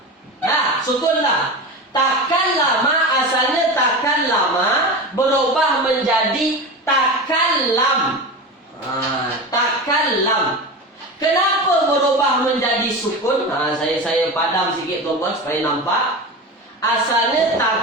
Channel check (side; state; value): both; normal; correlation 0.26